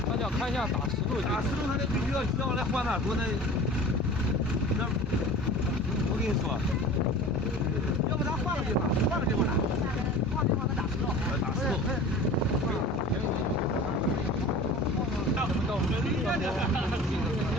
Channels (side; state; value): both; normal; correlation 0.39